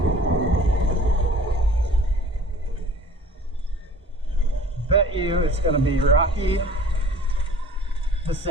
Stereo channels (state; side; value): normal; both; correlation 0.48